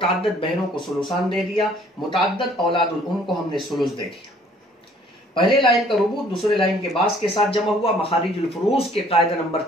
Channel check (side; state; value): both; normal; correlation 0.58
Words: بہنوں کو ثلثان دے دیا, متعدد اولاد الام کو ہم نے ثلث دے دیا. پہلے لائن کا ربع دوسرے لائن کے باس کے ساتھ جمع ہوا. مخارج الفروض کے قاعدہ نمبر